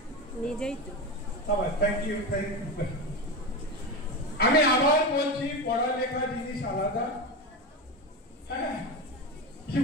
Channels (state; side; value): normal; both; correlation 0.20